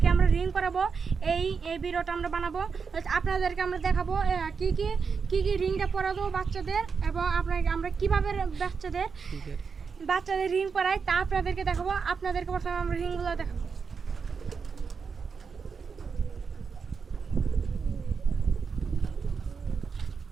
আমরা রিং করাবো। এই ভিডিওটা আমরা বানাবো। আপনাদেরকে আমরা দেখাবো কি কি রিংটা পরাবো বাচ্চাদের, এবং আমরা কিভাবে বাচ্চাদের রিং পরাই তা আপনাদেরকে দেখাবো। আপনাদেরকে প্রথমে আমরা রিংগুলো দেখাবো।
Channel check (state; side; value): quieter; left; 5.6 dB